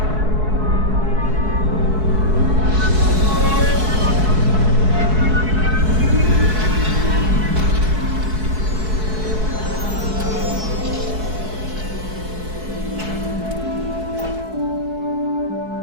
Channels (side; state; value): left; late; 4.6 ms